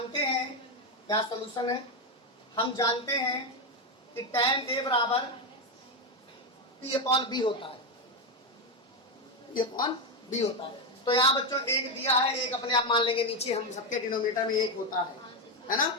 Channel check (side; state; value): both; normal; correlation 0.09